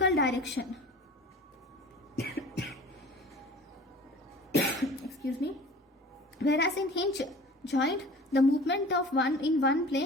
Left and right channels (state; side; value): normal; both; correlation 0.43